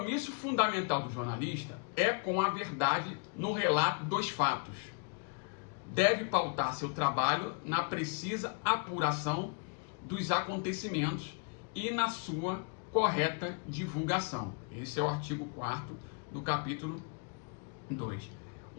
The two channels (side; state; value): right; quieter; 37.6 dB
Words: fundamental do jornalista é com a verdade no relato dos fatos. Deve pautar seu trabalho na precisa apuração dos acontecimentos e na sua correta divulgação. Esse é o artigo 4º do capítulo 2.